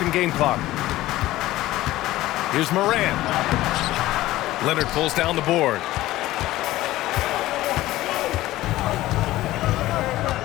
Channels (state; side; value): quieter; right; 16.4 dB